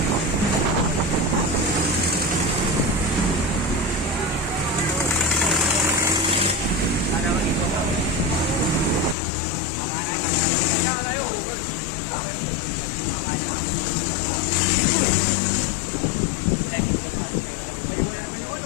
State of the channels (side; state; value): right; drops out; at 9.2 s